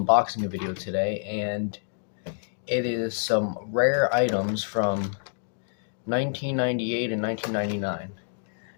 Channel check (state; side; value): silent; right; digital silence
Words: video today, and it is some rare items from 1998 and 1999.